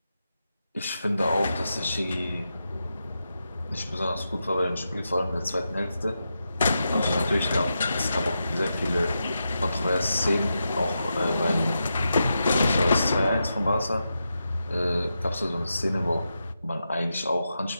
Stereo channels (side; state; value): both; inverted; correlation -0.88